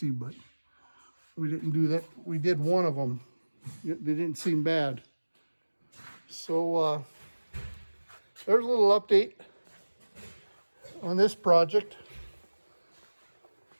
but we didn't do that. We did one of them. They didn't seem bad. So there's a little update on this project.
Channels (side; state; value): both; inverted; correlation -1.00